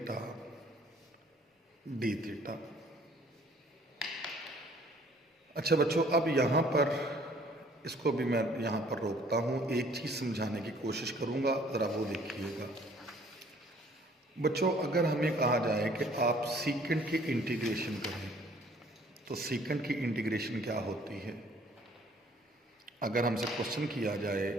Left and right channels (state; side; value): normal; both; correlation 0.57